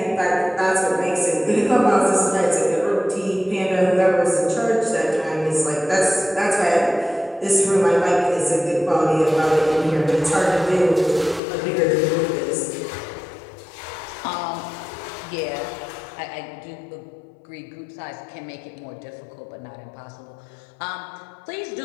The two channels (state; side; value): drops out; right; at 11.4 s